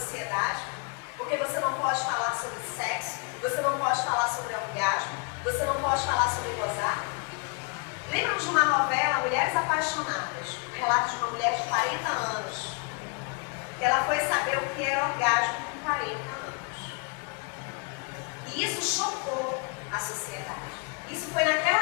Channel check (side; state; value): right; quieter; 33.5 dB